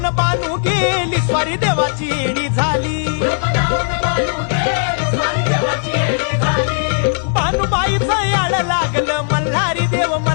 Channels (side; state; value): right; silent; 62 dB below the other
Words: बानू गेली स्वारी देवाची येडी झाली भानुबाईचं याड लागलं मल्हारी देव